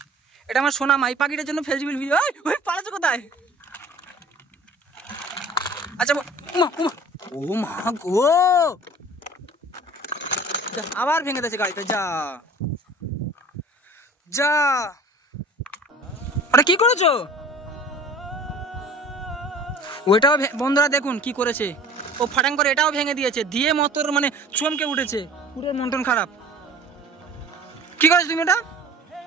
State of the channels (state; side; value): normal; both; correlation 0.44